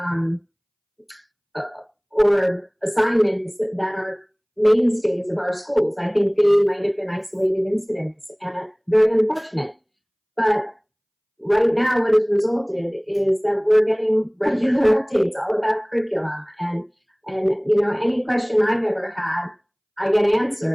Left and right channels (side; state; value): both; identical; correlation 1.00